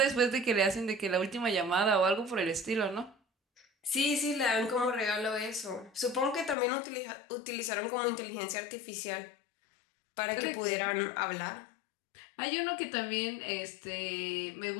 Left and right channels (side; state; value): right; drops out; at 6.6 s